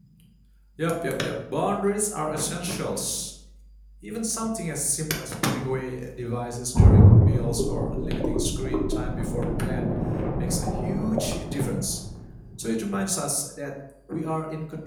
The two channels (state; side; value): identical; both; correlation 1.00